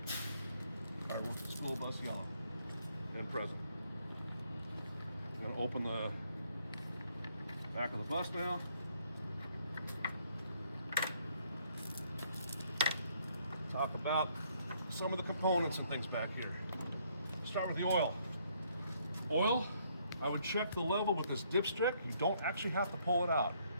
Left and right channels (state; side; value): inverted; both; correlation -0.68